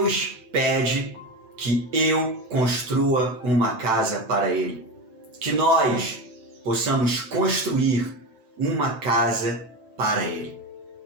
pede que eu construa uma casa para Ele, que nós possamos construir uma casa para Ele.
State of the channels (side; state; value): left; late; 9.0 ms